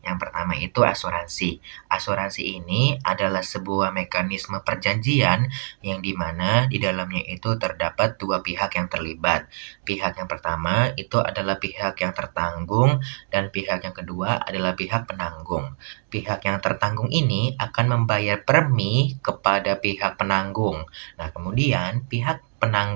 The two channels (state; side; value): silent; left; 63 dB below the other